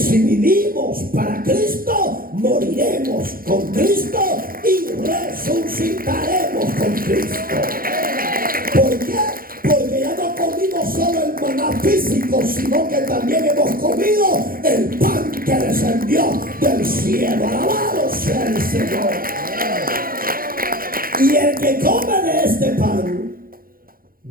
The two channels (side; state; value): left; late; 0.42 ms